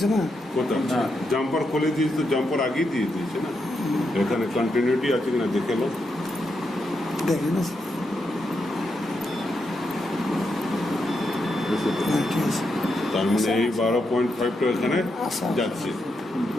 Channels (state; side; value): normal; both; correlation 0.83